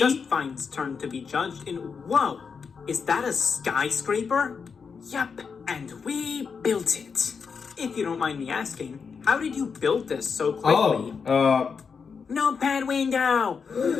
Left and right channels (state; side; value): quieter; right; 5.8 dB